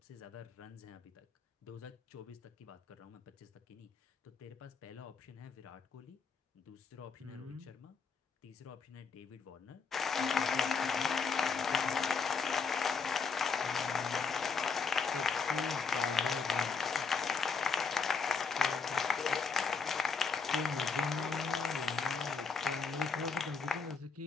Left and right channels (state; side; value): quieter; right; 5.3 dB